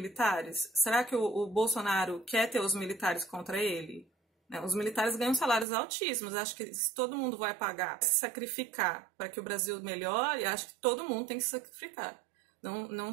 Será que o Bolsonaro quer ter os militares contra ele? Os militares ganham salários altíssimos. Acho que se todo mundo vai pagar, se sacrificar para que o Brasil melhore, acho que todo mundo tem que se sacrificar. Não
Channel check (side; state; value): left; drops out; at 5.7 s